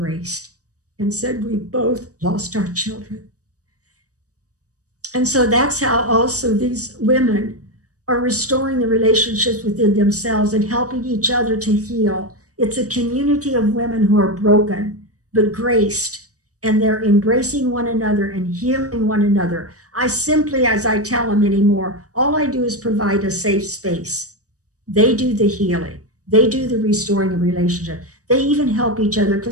and said, we both lost our children. And so that's how also these women are restoring the relationships within themselves and helping each other to heal. It's a community of women who are broken, but graced, and they're embracing one another and healing one another. I simply, as I tell them anymore, all I do is provide a safe space. They do the healing. They do the restoring of relationship. They even help each other,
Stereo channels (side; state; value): left; late; 0.66 ms